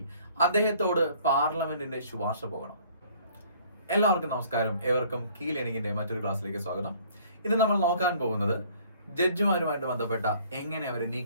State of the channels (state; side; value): inverted; both; correlation -0.56